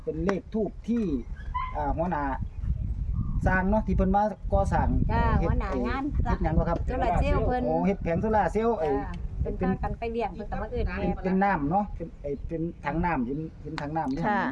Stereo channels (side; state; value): both; identical; correlation 1.00